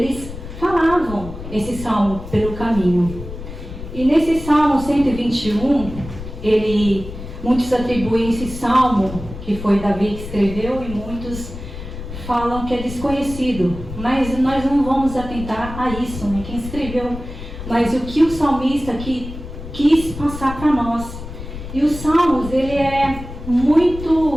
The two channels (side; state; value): left; noise; rumble, 11 dB below the sound